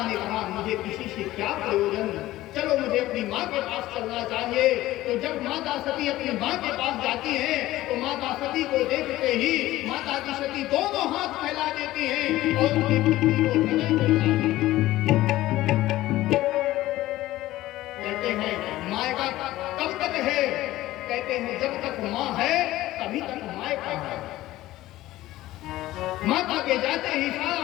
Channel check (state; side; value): quieter; right; 16.1 dB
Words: ने कहा मुझे किसी से क्या प्रयोजन, चलो मुझे अपनी माँ के पास चलना चाहिए। तो जब माता सती अपनी माँ के पास जाती हैं तो माता सती को देखते ही माता की सती दोनों हाथ फैला देती हैं और उनकी पुत्री को हृदय से लगाती हैं। कहते हैं मायका कब तक है, कहते हैं जब तक माँ है तभी तक मायका है। माता के जाते ही सारा